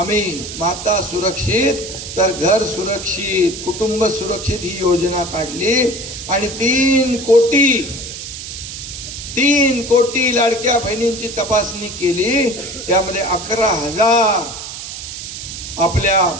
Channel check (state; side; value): noise; right; hiss, 9 dB below the sound